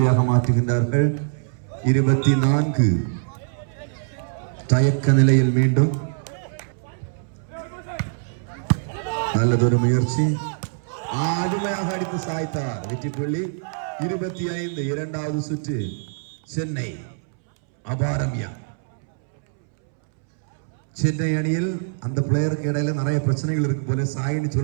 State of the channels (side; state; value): left; silent; 63 dB below the other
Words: மாற்றுகின்றார்கள். 24. தயக்க நிலையில் மீண்டும் நல்லதொரு முயற்சி. அருமையாக அடித்து சாய்த்தார். வெற்றி புள்ளி 25. இரண்டாவது சுற்று சென்னை அபாரமியா. சென்னை அணியில் அந்த பிளேயருக்கு இடையில நிறைய பிரச்சனைகள் இருக்கு போல. சாயின்னு